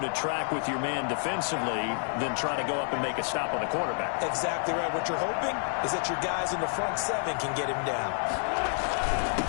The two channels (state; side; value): silent; right; 57 dB below the other